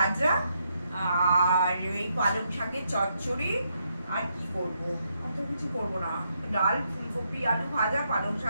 আর এই পালং শাকের চচ্চড়ি, আর কি করব, অত কিছু করবো না। ডাল ফুলকপি আলু ভাজা পালং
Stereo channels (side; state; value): both; inverted; correlation -0.78